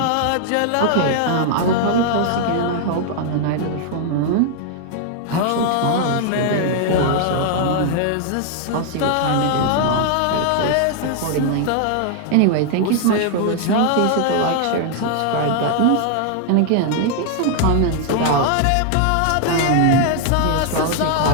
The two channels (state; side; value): different; both; correlation 0.00